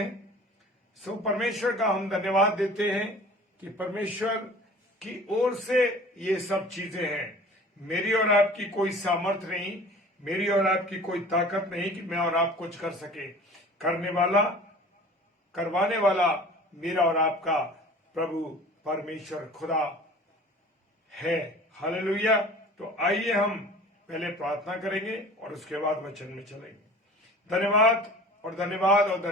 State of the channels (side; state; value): both; normal; correlation 0.44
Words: सो परमेश्वर का हम धन्यवाद देते हैं कि परमेश्वर की ओर से ये सब चीजें हैं। मेरी और आपकी कोई सामर्थ नहीं, मेरी और आपकी कोई ताकत नहीं कि मैं और आप कुछ कर सके। करने वाला, करवाने वाला मेरा और आपका प्रभु परमेश्वर खुदा है। हालेलुया। तो आइए हम पहले प्रार्थना करेंगे और उसके बाद वचन में चलेंगे। धन्यवाद और धन्यवाद और